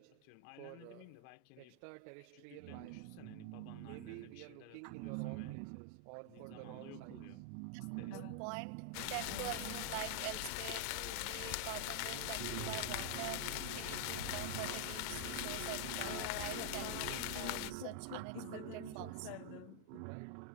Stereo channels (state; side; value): different; both; correlation 0.00